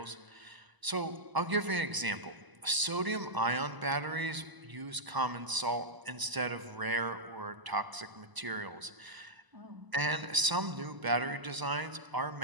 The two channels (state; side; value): late; left; 1.0 ms